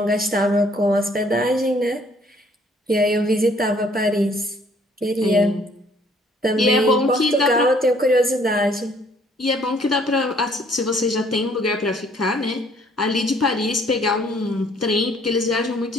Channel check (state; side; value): normal; both; correlation 0.61